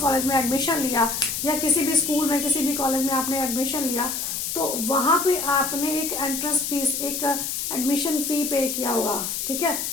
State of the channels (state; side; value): noise; left; hiss, 3 dB below the sound